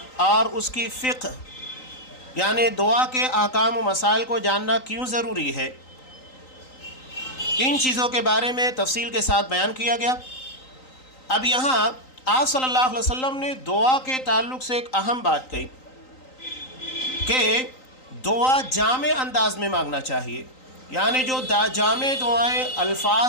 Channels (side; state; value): right; late; 3.9 ms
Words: اور اس کی فقہ یعنی دعا کے احکام و مسائل کو جاننا کیوں ضروری ہے، ان چیزوں کے بارے میں تفصیل کے ساتھ بیان کیا گیا۔ اب یہاں آپ صلی اللہ علیہ وسلم نے دعا کے تعلق سے ایک اہم بات کہی کہ دعا جامع انداز میں مانگنا چاہیے، یعنی جو جامع دعائیں